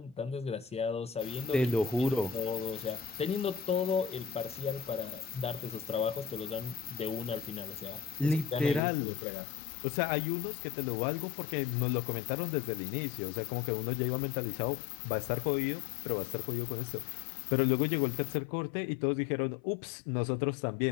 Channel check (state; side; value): drops out; right; at 8.8 s